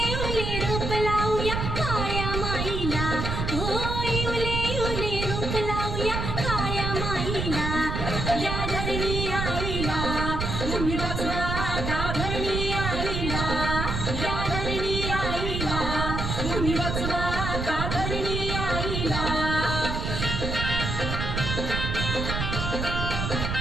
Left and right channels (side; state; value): right; noise; rumble, 2 dB below the sound